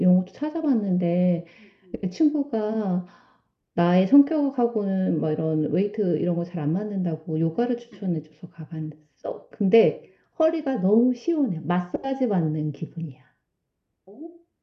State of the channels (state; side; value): identical; both; correlation 1.00